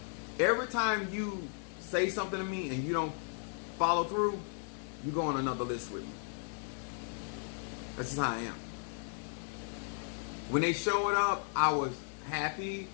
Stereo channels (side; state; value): right; silent; 54 dB below the other